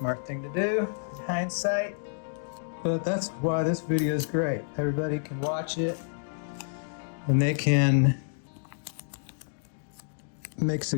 thing to do in hindsight. But that's why this video is great. Everybody can watch it and they can make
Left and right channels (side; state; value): right; silent; digital silence